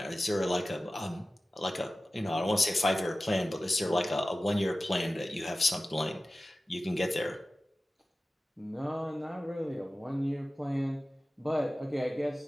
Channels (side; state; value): both; normal; correlation 0.95